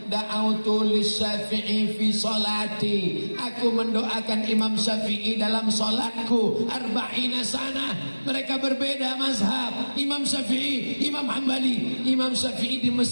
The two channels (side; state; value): both; inverted; correlation -1.00